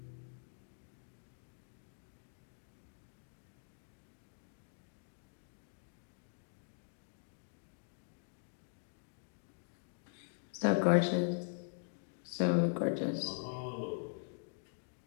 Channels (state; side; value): silent; right; digital silence